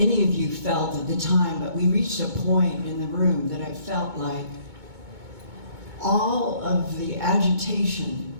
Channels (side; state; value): left; late; 2.2 ms